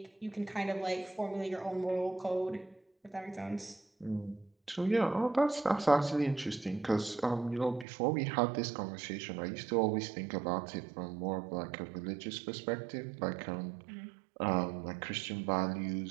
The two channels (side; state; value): left; drops out; at 7.9 s